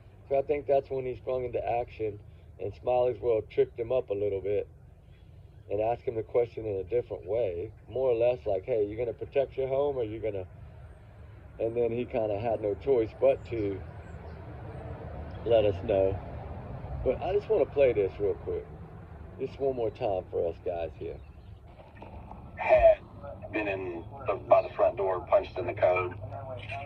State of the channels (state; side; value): identical; both; correlation 1.00